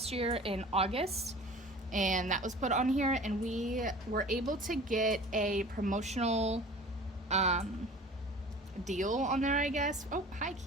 year in August, and that was put on here, and we were able to get a promotional deal on there, I guess. Oh, hi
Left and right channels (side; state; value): both; normal; correlation 0.43